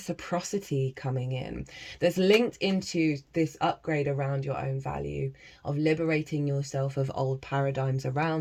coming in. That's linked into this upgrade around your own value, of liberating yourself of old paradigms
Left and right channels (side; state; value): both; identical; correlation 1.00